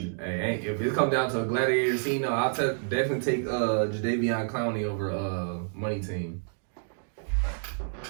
Hey, if it comes down to a gladiator scene, no, I'll definitely take Jadeveon Clowney over Money Team.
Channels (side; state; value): left; silent; digital silence